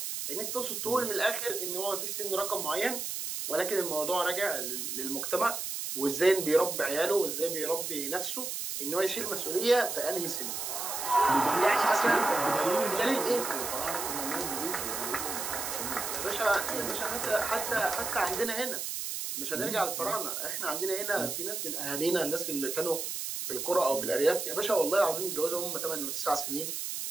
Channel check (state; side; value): noise; right; hiss, 4 dB below the sound